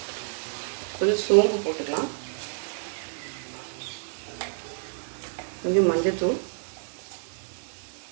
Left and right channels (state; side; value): silent; left; digital silence